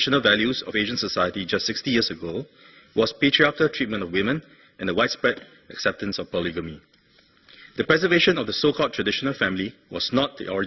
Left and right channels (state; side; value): identical; both; correlation 1.00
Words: values of Asian society just 60 years ago was patriarchal treatment of women and the widespread acceptance of polygamy. The preservation of the so-called traditional family was not the